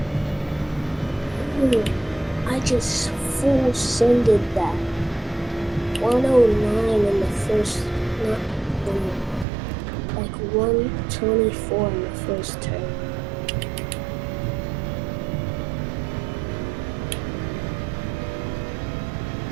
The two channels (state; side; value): drops out; left; at 9.5 s